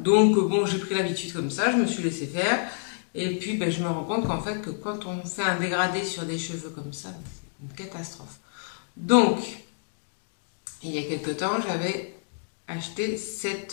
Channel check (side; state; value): right; silent; digital silence